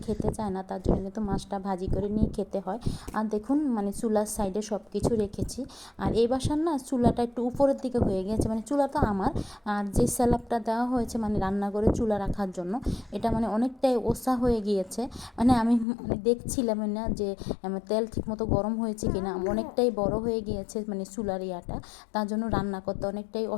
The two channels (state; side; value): drops out; right; at 15.9 s